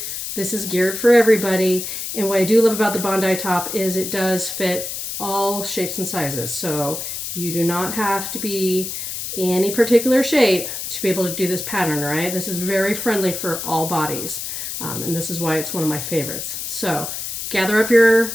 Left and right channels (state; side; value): noise; left; hiss, 6 dB below the sound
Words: This is geared for everybody. And what I do love about the Bondi top is it does fit all shapes and sizes. So you do not have to be any particular shape to be able to do this pattern, right? This is very friendly for all bodies. And this is why it's one of my favorites. So gather up your